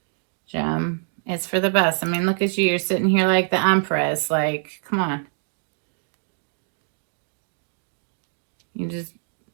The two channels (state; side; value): silent; left; 62 dB below the other